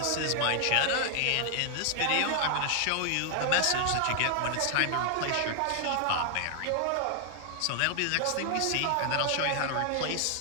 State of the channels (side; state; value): both; different; correlation 0.00